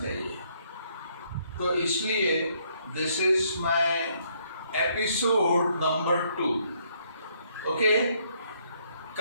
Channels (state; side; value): inverted; both; correlation -0.69